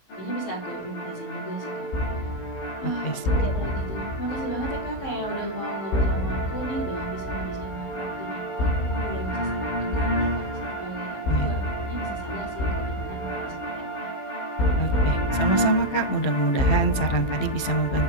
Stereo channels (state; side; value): late; right; 15 ms